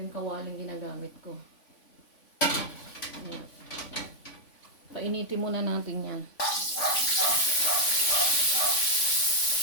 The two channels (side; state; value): right; late; 3.5 ms